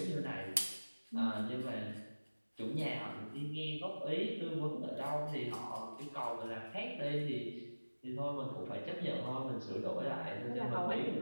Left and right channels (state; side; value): inverted; both; correlation -1.00